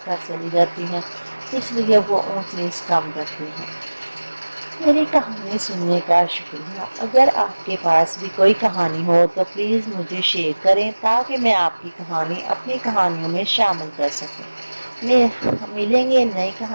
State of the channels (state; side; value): inverted; both; correlation -1.00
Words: کر چلی جاتی ہیں، اس لیے وہ اونچ نیچ کم کرتی ہیں۔ میری کہانی سننے کا شکریہ۔ اگر آپ کے پاس بھی کوئی کہانی ہو تو پلیز مجھے شیئر کریں تاکہ میں آپ کی کہانی اپنی کہانیوں میں شامل کر سکوں۔ ملیں گے نئی